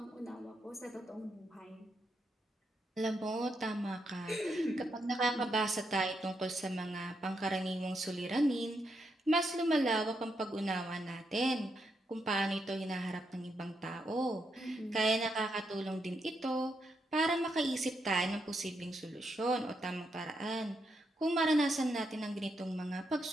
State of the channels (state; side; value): normal; both; correlation 0.81